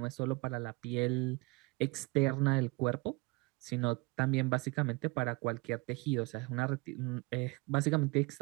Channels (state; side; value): quieter; left; 26.0 dB